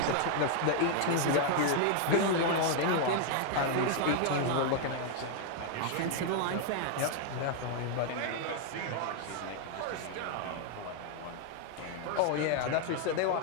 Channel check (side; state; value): both; different; correlation 0.00